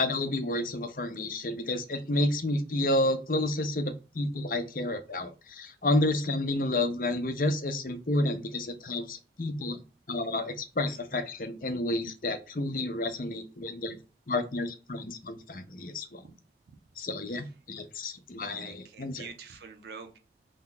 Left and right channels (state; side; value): normal; both; correlation 0.39